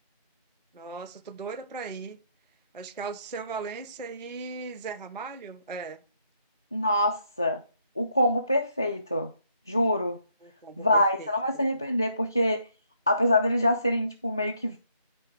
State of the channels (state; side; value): inverted; both; correlation -0.72